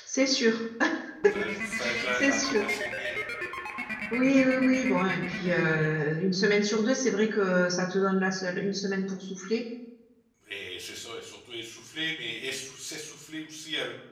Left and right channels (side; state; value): both; identical; correlation 1.00